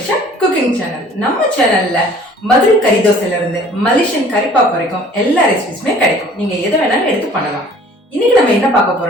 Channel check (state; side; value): normal; both; correlation 0.51